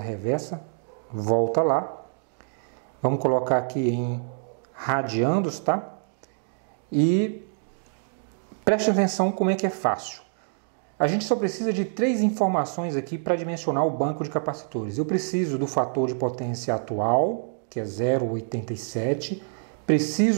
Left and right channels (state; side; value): silent; left; digital silence